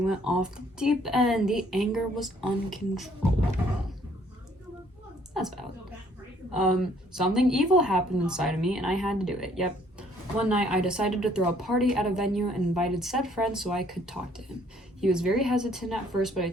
off the deep end. The anger was uncontrollable. That's valid. Something evil happened inside of me and I had to do it. Yep. One night I decided to throw a party at a venue and invited said friend so I could talk to him. He was very hesitant at first, but I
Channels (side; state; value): both; normal; correlation 0.63